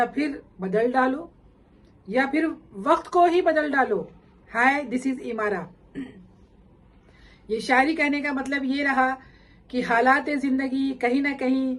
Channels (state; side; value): identical; both; correlation 1.00